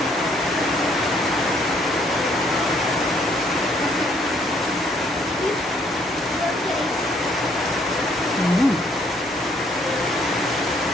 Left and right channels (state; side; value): normal; both; correlation 0.66